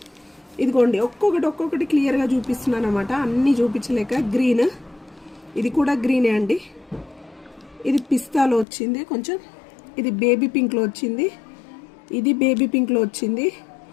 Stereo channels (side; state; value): right; drops out; at 8.7 s